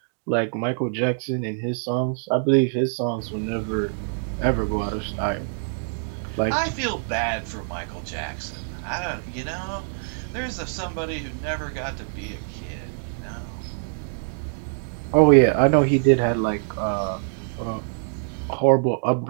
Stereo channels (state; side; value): silent; left; digital silence